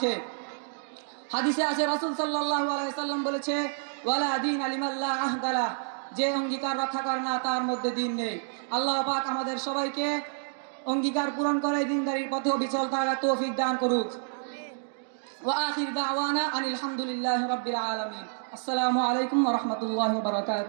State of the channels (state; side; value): silent; left; digital silence